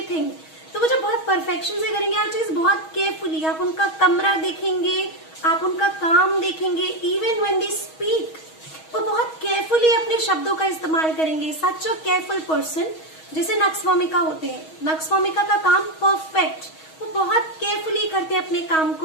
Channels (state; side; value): late; right; 6.3 ms